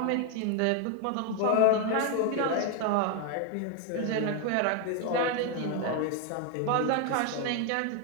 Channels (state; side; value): different; both; correlation 0.01